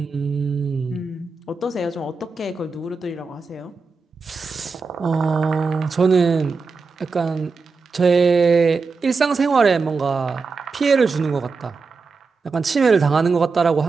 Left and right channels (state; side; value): quieter; left; 4.4 dB